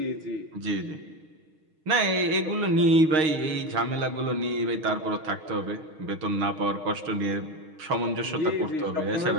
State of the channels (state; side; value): late; left; 6.4 ms